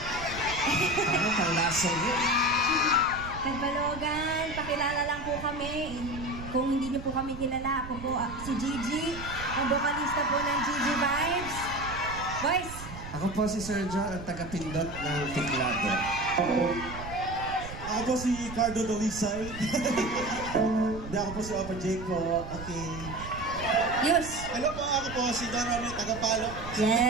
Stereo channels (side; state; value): right; noise; rumble, 11 dB below the sound